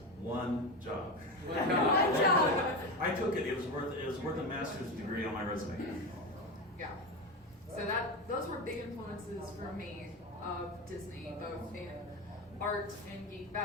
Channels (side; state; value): both; normal; correlation 0.19